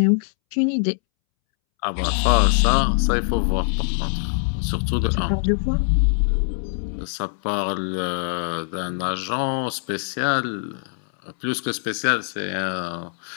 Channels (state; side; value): silent; right; 64 dB below the other